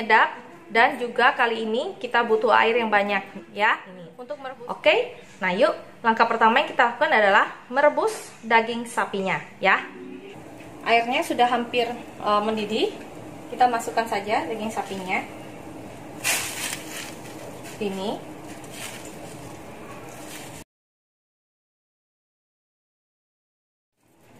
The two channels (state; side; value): identical; both; correlation 1.00